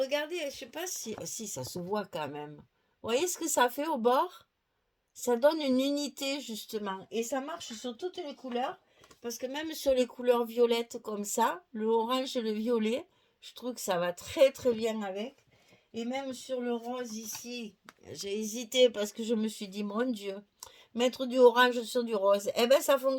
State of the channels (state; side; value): identical; both; correlation 1.00